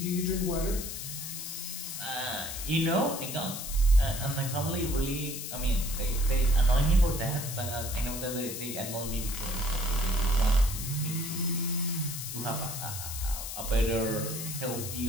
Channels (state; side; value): noise; left; hiss, 7 dB below the sound